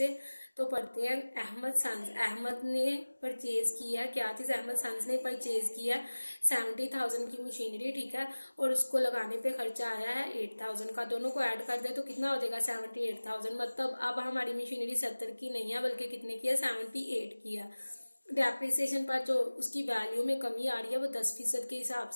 तो पढ़ते हैं। अहमद ने परचेज किया, क्या चीज़ अहमद सन्स ने परचेज किया 70,000 की मशीनरी, ठीक है। और उसको लगाने पे खर्चा आया है 8,000 का। दोनों को ऐड कर दे तो कितना हो जाएगा 78,000। मतलब अब हमारी मशीनरी 70 की नहीं है बल्कि कितने की है, 78 की है। डेप्रिसिएशन पर जो उसकी वैल्यू में कमी आ रही है वो 10% के हिसाब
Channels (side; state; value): both; inverted; correlation -1.00